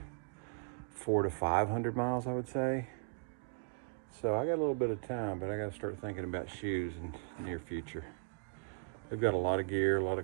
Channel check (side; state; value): left; quieter; 37.9 dB